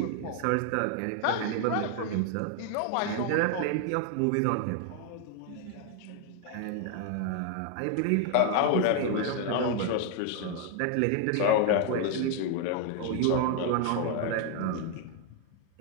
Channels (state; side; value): different; both; correlation 0.00